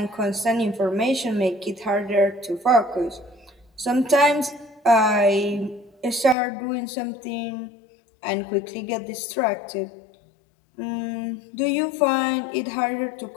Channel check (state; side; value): drops out; right; at 6.4 s